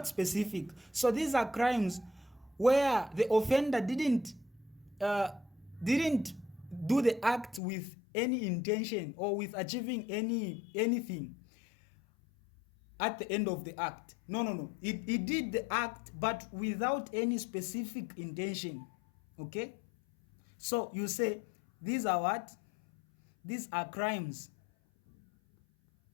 specific. So these are crimes where the offender didn't do the act with any intention or with achieving anything at the end of the act. No. He did the act but without any specific intention. Okay? So you say these are what? These are crimes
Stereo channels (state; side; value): drops out; right; at 7.6 s